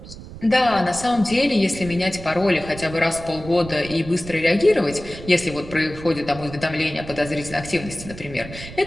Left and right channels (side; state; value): right; noise; rumble, 14 dB below the sound